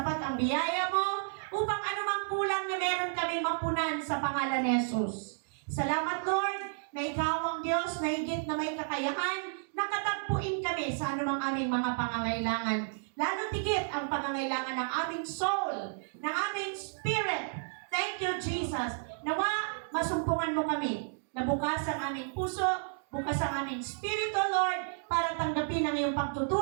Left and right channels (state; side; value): silent; left; digital silence